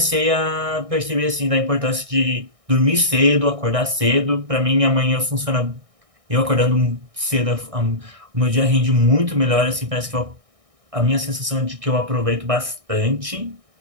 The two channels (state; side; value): late; left; 1.6 ms